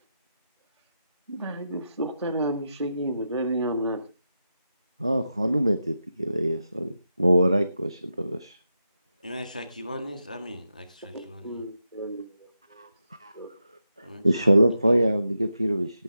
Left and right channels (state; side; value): inverted; both; correlation -0.87